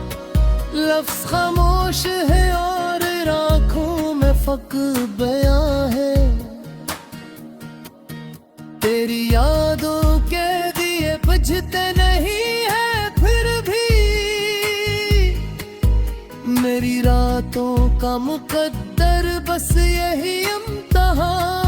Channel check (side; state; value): both; identical; correlation 1.00